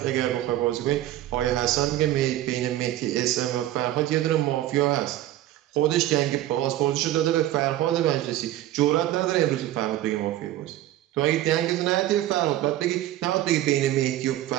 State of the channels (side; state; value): left; quieter; 14.1 dB